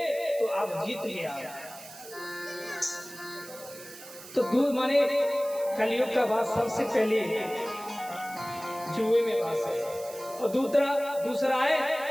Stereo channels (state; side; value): noise; right; hiss, 16 dB below the sound